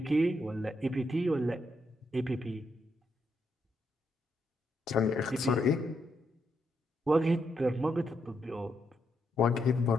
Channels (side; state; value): both; normal; correlation 0.80